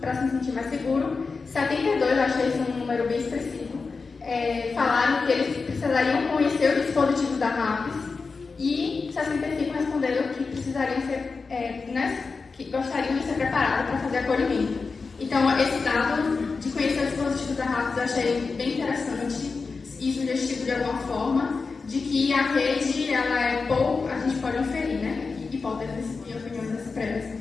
para se sentir mais seguro, 72, achei esse um número bem expressivo, falaram que eles precisariam conhecer o dispositivo da RAPES, e 65 responderam que precisariam ser, que gostariam de ser preparados para fazer acolhimento. Então, esse dado de conhecer o dispositivo da RAPES eu achei bem interessante e sugestivo de alguma forma, de que a rede, ela é pouco, a gente pode inferir, né, hipóteses e opiniões expressas,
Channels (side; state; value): right; quieter; 4.5 dB